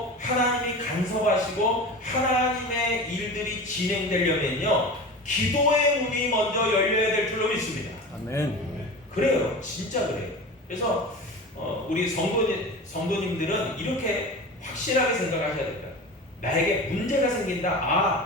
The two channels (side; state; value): both; normal; correlation 0.32